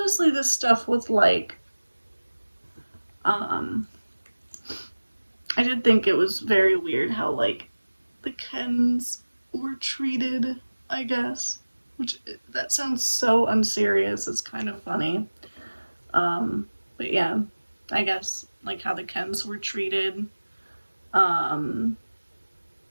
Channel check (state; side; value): inverted; both; correlation -1.00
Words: this stuff with like, I did think it was very weird how, like, the Kens were treated, I guess. Which, that sounds so unserious, it's kind of funny. But yeah, I guess, like, how the Kens were treated. Like,